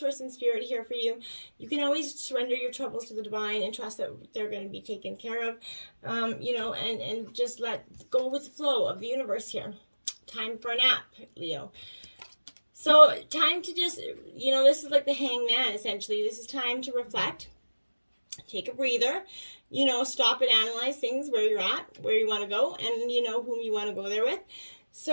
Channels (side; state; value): both; inverted; correlation -1.00